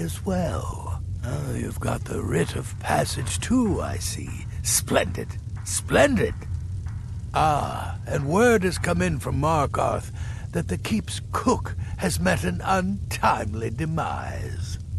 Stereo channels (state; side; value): identical; both; correlation 1.00